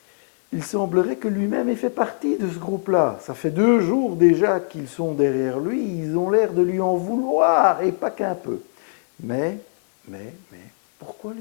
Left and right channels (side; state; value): right; silent; digital silence